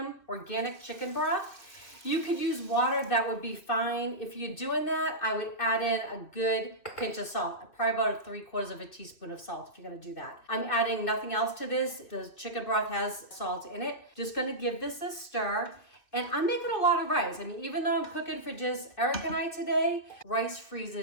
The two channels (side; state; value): right; late; 2.6 ms